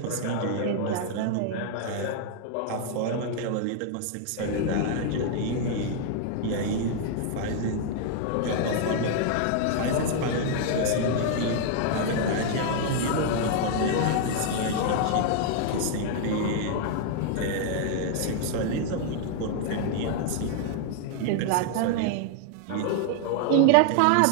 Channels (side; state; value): both; different; correlation 0.00